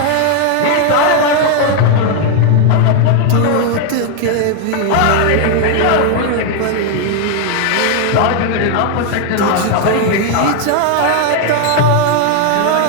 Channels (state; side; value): different; both; correlation 0.00